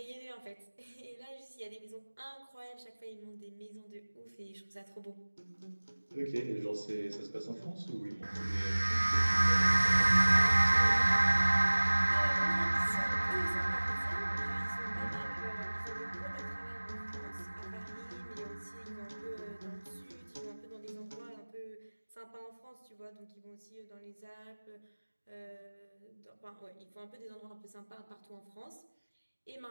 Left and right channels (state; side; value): inverted; both; correlation -1.00